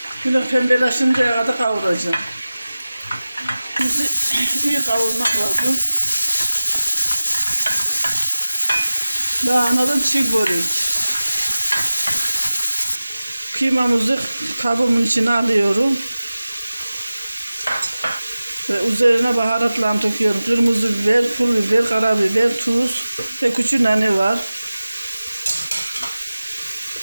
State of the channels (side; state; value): both; inverted; correlation -0.96